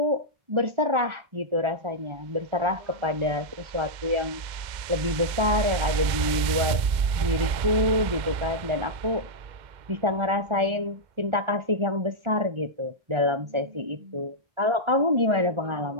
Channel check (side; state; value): left; late; 2.0 ms